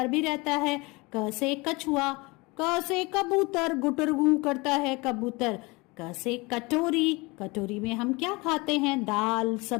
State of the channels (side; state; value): right; quieter; 25.0 dB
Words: भी रहता है। क से कछुआ। क से कबूतर, गुटर गू करता है कबूतर। क से कटोरी। कटोरी में हम क्या खाते हैं? दाल